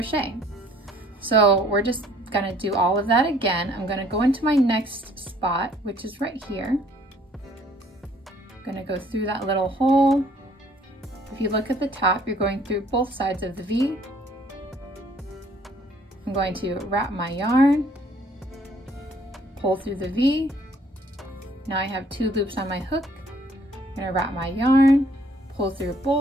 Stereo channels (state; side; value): normal; both; correlation 0.60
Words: So we're just going to do all of that again. I'm going to go into my next spot, which is right here. I'm going to go through that little hole. If you look at the top, you're going through both sides of the V. I'm going to wrap my yarn, pull through the V. Now I have 2 loops on my hook. I'm going to wrap my yarn, pull through